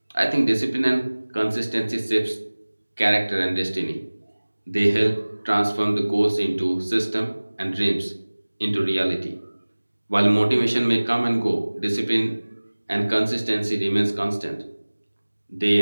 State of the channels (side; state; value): both; inverted; correlation -1.00